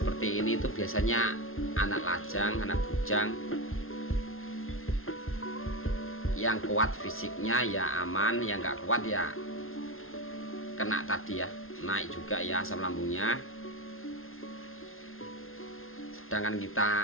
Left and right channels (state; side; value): late; right; 0.61 ms